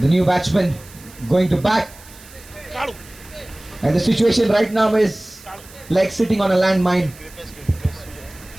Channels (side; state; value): right; noise; hiss, 21 dB below the sound